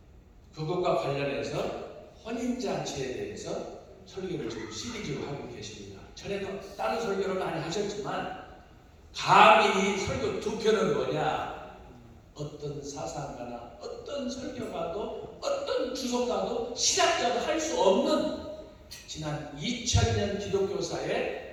그것과 관련해서 혼인잔치에 대해서 설교를 지금 시리즈로 하고 계십니다. 전에도 다른 설교를 많이 하셨지만 감히 이 설교 두 편은 뭐냐? 어떤 사상가나 어떤 설교가도 어떤 주석가도 신학자도 할 수 없는 지난 2000년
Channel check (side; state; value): both; identical; correlation 1.00